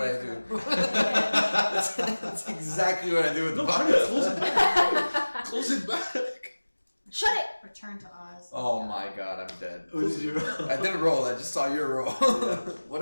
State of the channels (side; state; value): both; inverted; correlation -1.00